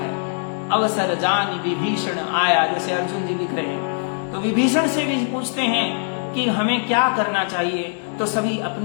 अवसर जान विभीषण आया, जैसे अर्जुन जी लिख रहे हैं। तो विभीषण से भी पूछते हैं कि हमें क्या करना चाहिए। तो सभी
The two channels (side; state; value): right; silent; 64 dB below the other